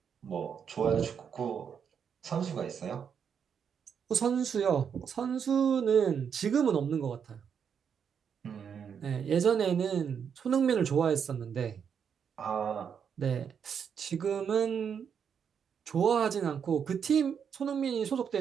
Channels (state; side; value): quieter; left; 7.3 dB